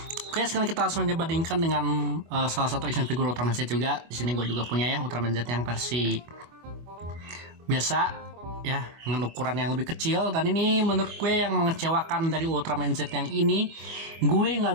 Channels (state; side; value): late; left; 25 ms